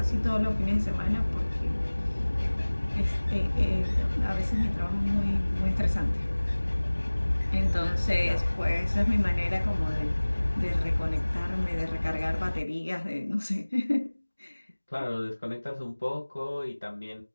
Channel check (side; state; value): both; inverted; correlation -1.00